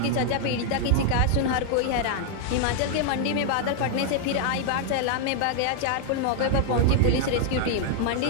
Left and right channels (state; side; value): different; both; correlation 0.00